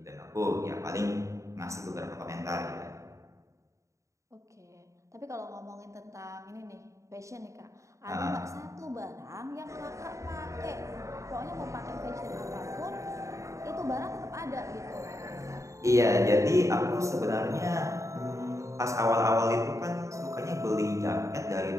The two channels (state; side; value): late; left; 0.15 ms